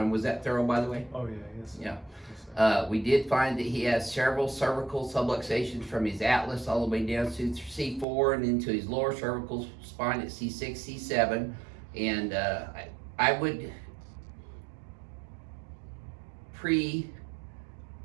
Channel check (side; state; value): left; drops out; at 8.1 s